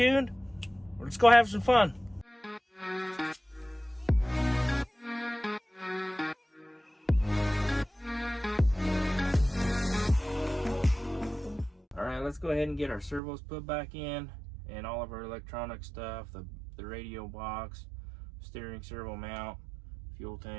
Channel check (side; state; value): left; drops out; at 13.2 s